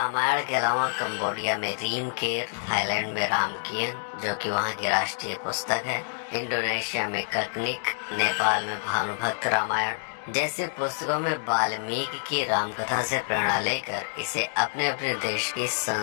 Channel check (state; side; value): silent; right; digital silence